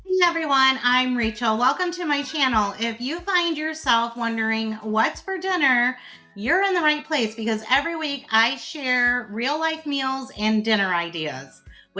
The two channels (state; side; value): identical; both; correlation 1.00